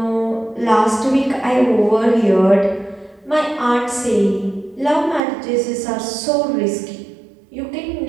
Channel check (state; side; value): drops out; left; at 5.2 s